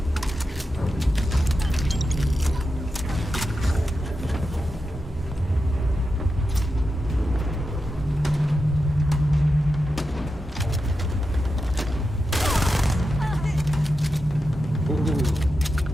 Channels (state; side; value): normal; both; correlation 0.89